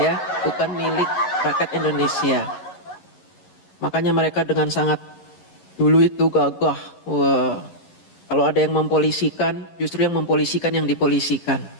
ya, bukan milik rakyat Indonesia. Makanya mereka dengan sangat dulu itu gagah. Kalau ada yang mempolisikan, justru yang mempolisikan yang dipolisikan.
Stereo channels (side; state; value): right; late; 11 ms